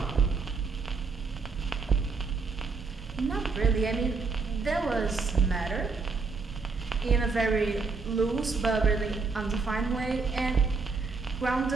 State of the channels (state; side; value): quieter; left; 4.5 dB